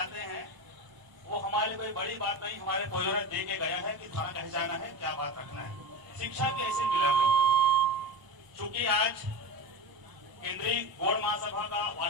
हैं, वो हमारे लिए कोई बड़ी बात नहीं, हमारे पूर्वजों ने दे के गया है कि थाना कैसे जाना है, क्या बात रखना है। शिक्षा भी ऐसे मिले हम लोग। चूंकि आज केंद्रीय गौड़ महासभा का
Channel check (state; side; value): late; left; 1.0 ms